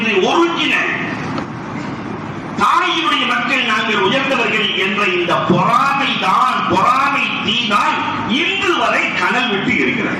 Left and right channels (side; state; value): both; identical; correlation 1.00